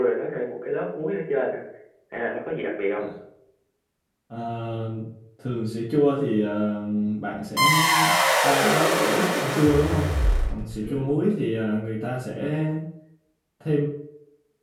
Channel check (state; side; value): identical; both; correlation 1.00